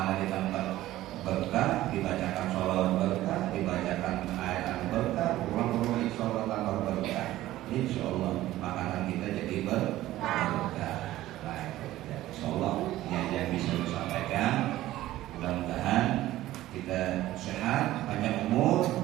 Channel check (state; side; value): quieter; left; 15.2 dB